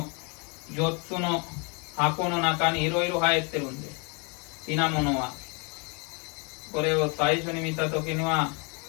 4つの箱の中にいろいろ入ってるんです。品物はこれを最初に見た時には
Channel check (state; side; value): quieter; right; 33.1 dB